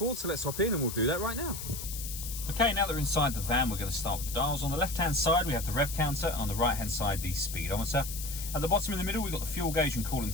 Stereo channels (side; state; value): left; noise; hiss, 8 dB below the sound